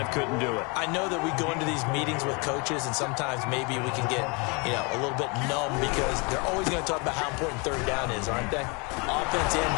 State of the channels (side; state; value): right; quieter; 30.9 dB